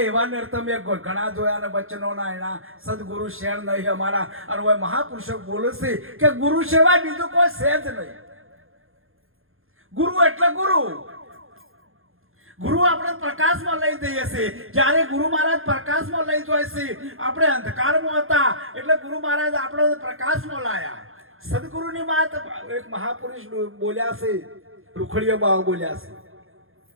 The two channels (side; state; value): left; late; 0.60 ms